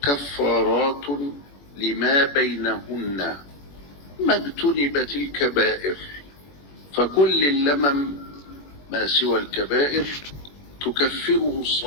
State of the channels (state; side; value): late; right; 21 ms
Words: كفارات لما بينهن ما اجتنبت الكبائر، فكل اللمم ما سوى الكبائر تكفره